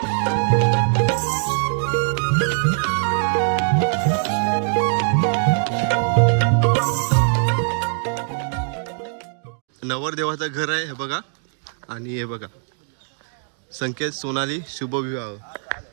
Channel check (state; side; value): silent; left; digital silence